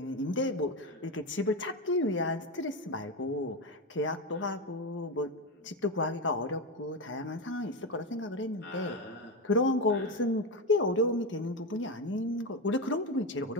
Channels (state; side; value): normal; both; correlation 0.15